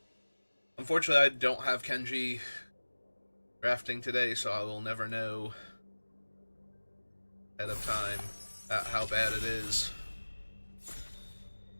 Unfortunately, I don't have Kenji drafting today, so I will never know ahead of time how bad it is.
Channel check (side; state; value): both; inverted; correlation -1.00